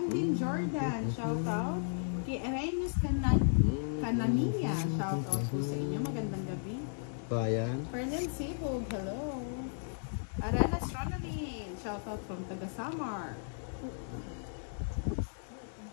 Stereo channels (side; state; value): right; silent; digital silence